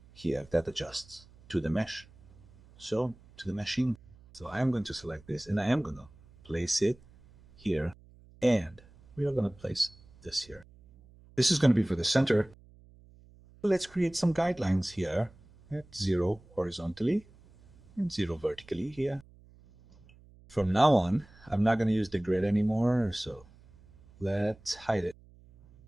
here, that adjusts to the mesh. So, to the meshing. So I am going to select this and I am going to place it here. And we are going to place this here. This is going to be for the center. Let's create some guidelines here at 0 horizontally and 0 vertically here. From now on, I'm not going to use the grid anymore, so let's hide it.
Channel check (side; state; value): right; noise; hum, 25 dB below the sound